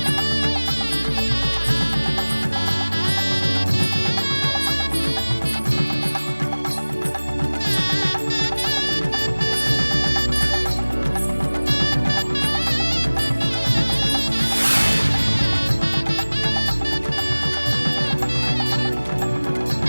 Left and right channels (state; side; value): inverted; both; correlation -1.00